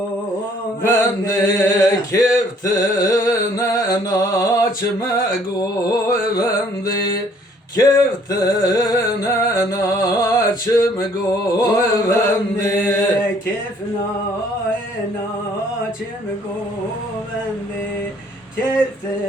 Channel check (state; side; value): normal; both; correlation 0.61